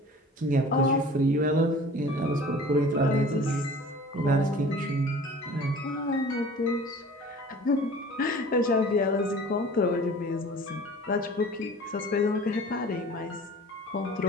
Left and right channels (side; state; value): both; normal; correlation 0.44